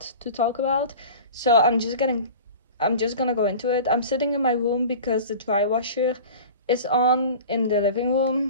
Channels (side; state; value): both; inverted; correlation -0.38